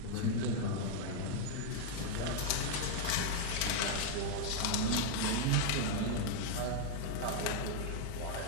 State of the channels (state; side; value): different; both; correlation 0.00